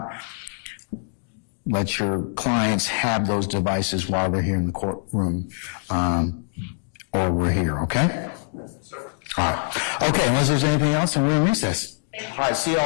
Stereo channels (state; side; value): silent; right; digital silence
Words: let your clients have those devices while they're here in the courtroom, or we're here, okay? All right. Okay, unless there's anything else, then we're in recess. All right, see you